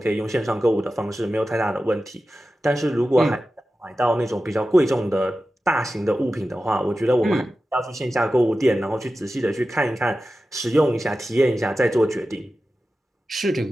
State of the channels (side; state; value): both; normal; correlation 0.93